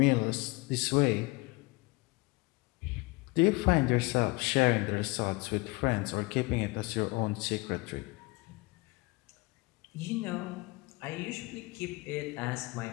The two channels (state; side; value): quieter; right; 24.0 dB